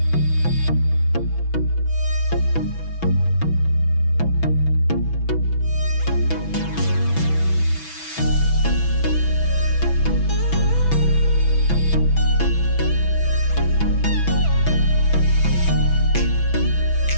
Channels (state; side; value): late; right; 6.1 ms